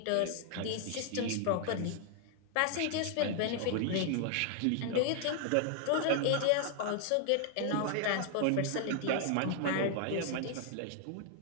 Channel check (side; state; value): both; different; correlation 0.00